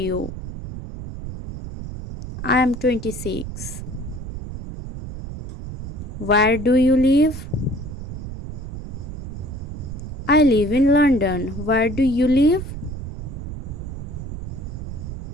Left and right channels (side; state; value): right; noise; rumble, 8 dB below the sound